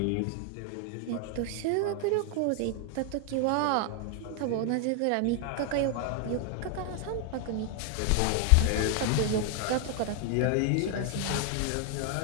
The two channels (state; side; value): different; both; correlation 0.00